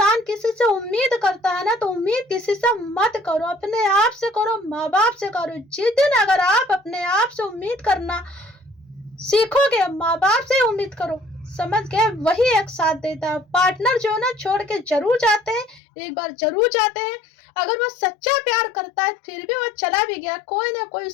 किसी से उम्मीद करता है ना तो उम्मीद किसी से मत करो, अपने आप से करो, माँ बाप से करो। जिस दिन अगर आप अपने आप से उम्मीद करना सीखोगे, माँ बाप से उम्मीद करो, समझ गए? वही एक साथ देता है। पार्टनर जो है ना छोड़ के जरूर जाते हैं, एक बार जरूर जाते हैं। अगर वो सच्चा प्यार करता है फिर भी वो चला भी गया, कोई ना कोई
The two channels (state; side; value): drops out; right; at 15.8 s